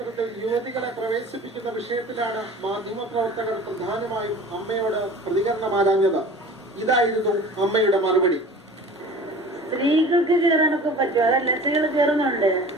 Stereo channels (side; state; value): both; normal; correlation 0.42